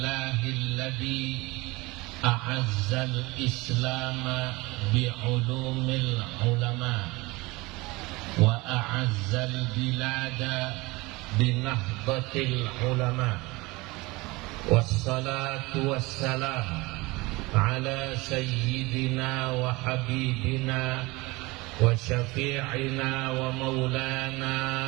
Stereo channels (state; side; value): quieter; left; 23.0 dB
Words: a'azzal islama bi'ulumil ulama wa a'azzal bilada binahdatil ulama wassalatu wassalam ala sayyidina wa habibina wa syafi'ina wa maulana